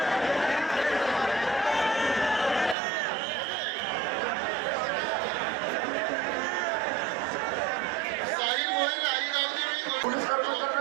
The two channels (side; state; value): left; drops out; at 2.8 s